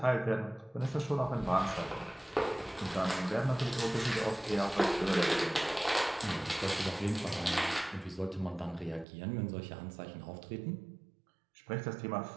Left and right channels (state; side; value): drops out; left; at 9.1 s